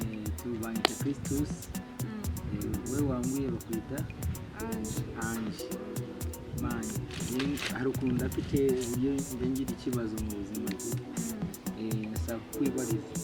tubanyita Christus we wambwiye bakwita Ange mani hari ukuntu ndafite uburyo ngira ikibazo mu buzima nasaba kwibariza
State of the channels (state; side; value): identical; both; correlation 1.00